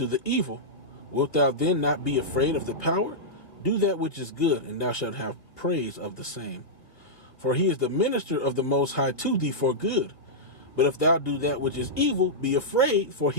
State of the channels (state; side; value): late; right; 2.6 ms